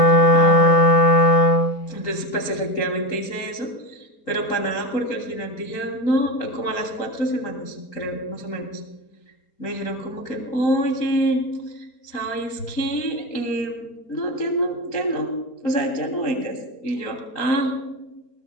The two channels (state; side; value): late; right; 3.9 ms